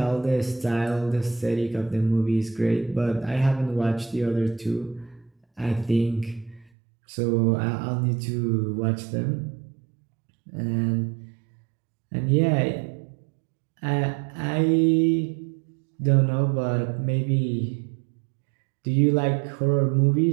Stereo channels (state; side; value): drops out; left; at 6.7 s